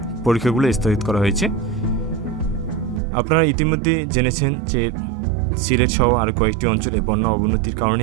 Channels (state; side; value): drops out; left; at 3.0 s